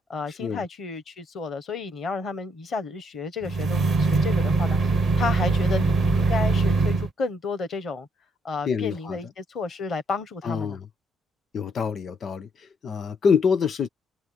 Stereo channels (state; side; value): normal; both; correlation 0.73